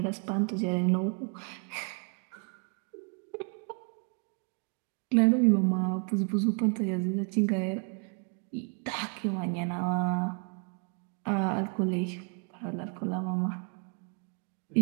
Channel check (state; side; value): quieter; left; 39.4 dB